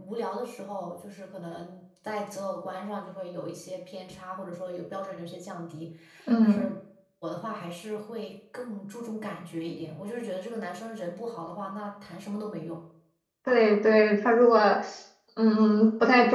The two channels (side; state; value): both; identical; correlation 1.00